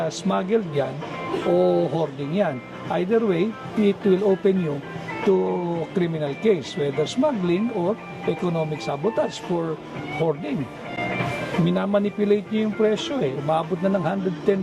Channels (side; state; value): both; identical; correlation 1.00